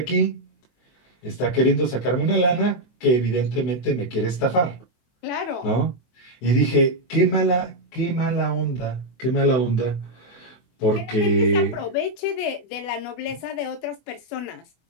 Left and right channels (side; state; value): right; late; 23 ms